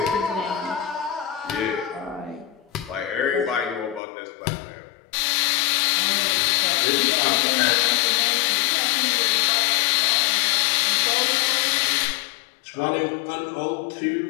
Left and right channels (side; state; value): right; drops out; at 4.0 s